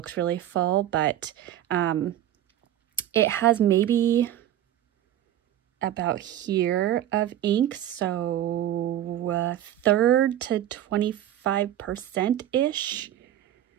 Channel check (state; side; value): quieter; left; 12.1 dB